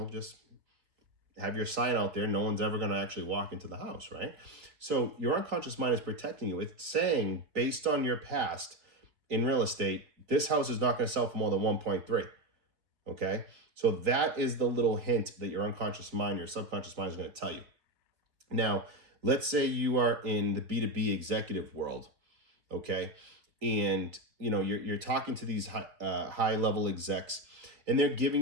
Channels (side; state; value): left; late; 4.1 ms